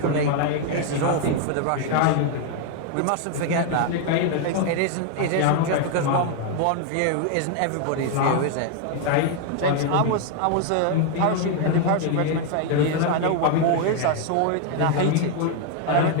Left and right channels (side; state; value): both; different; correlation 0.00